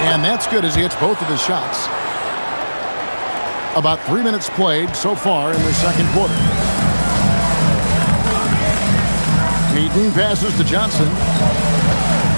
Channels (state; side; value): inverted; both; correlation -1.00